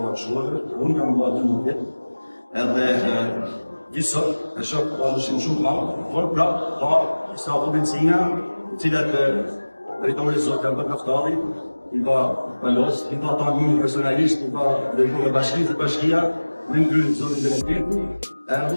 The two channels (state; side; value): inverted; both; correlation -1.00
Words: shkollë, unë kam bërë 12 vjet, edhe gjithsot e shoh shumë madh, por prapë ka disa potencina, të cilat drejtori zot kanë bërë kaftari, i ka palos, i ka tanë personalisht, i ka drejtuar bashkinë të bashkia, me ngrynë zotin Benedikti,